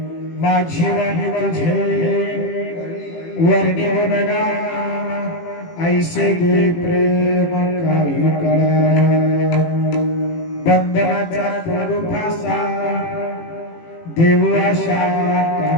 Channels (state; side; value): late; right; 18 ms